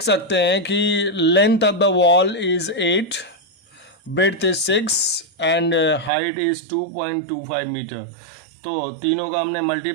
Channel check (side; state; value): left; drops out; at 6.1 s